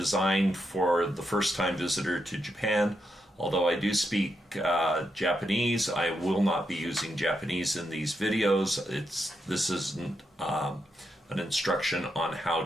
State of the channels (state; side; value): normal; both; correlation 0.83